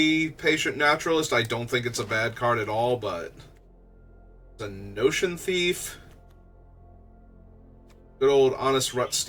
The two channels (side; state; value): both; identical; correlation 1.00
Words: Patient Naturalist. I don't think it's a bad card at all, but... the Notion Thief. Good old Honest